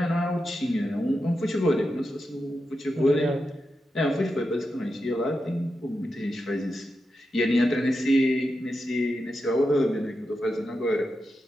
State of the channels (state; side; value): normal; both; correlation 0.88